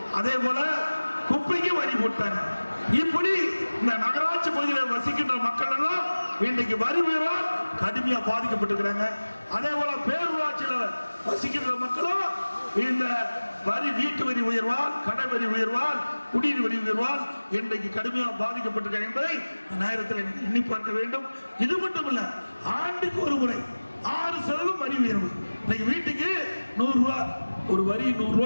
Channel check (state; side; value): inverted; both; correlation -1.00